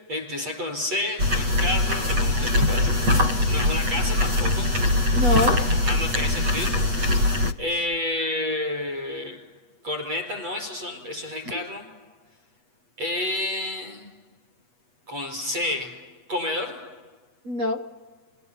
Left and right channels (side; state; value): left; late; 8.2 ms